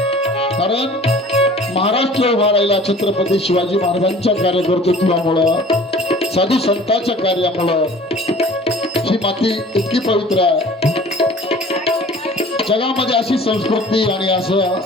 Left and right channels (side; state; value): both; normal; correlation 0.47